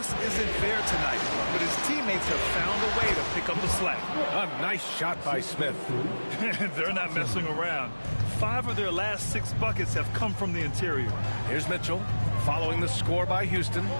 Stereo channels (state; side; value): inverted; both; correlation -1.00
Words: isn't there tonight, but his teammates have found a way to pick up the slack. A nice shot by Smith. They're not messing around. 5 of their last 6 buckets have come from the interior. Here's Mitchell, following the score by Houston.